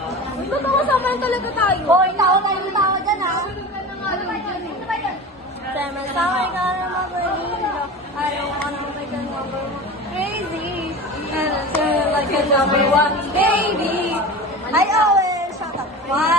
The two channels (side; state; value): both; normal; correlation 0.32